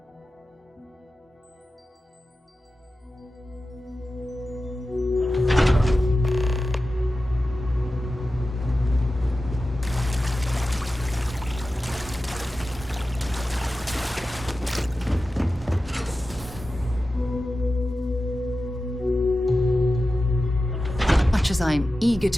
As I'm eager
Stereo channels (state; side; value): normal; both; correlation 0.93